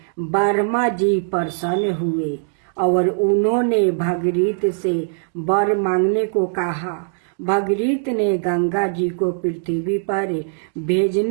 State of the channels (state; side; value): silent; left; digital silence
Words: ब्रह्मा जी प्रसन्न हुए और उन्होंने भागीरथ से वर मांगने को कहा। भागीरथ ने गंगा जी को पृथ्वी पर